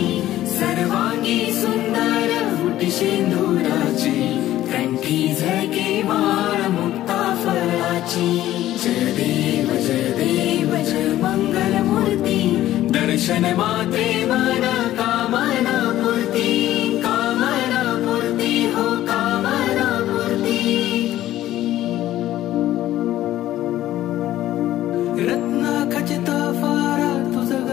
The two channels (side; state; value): right; quieter; 13.9 dB